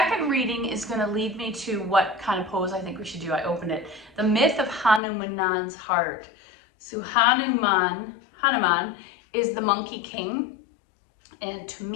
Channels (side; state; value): right; drops out; at 5.0 s